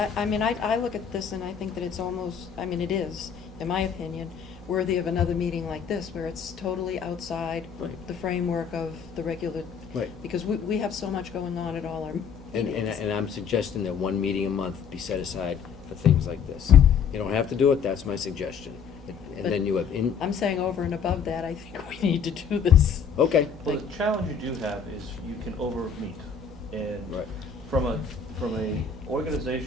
look at this and I think that it's almost, it is, in my opinion, worthy of another meeting like this, where it's totally outside Right. the framework of the regular. Right. Because we have so much going on at all our And meetings. I'm suggesting that 1 meeting a month be set aside for things like this. You don't have to do it, that's my suggestion. And then you have, I'm saying over and above that, I think we need to do this. okay. Well, the challenge you do have is you can over-meet. And Right. from a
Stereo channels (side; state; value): right; quieter; 6.6 dB